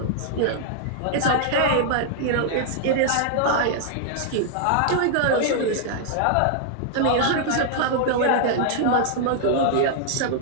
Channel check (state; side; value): different; both; correlation -0.01